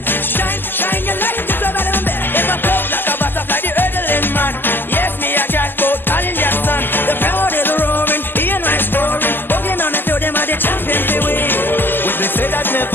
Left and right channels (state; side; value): late; right; 0.094 ms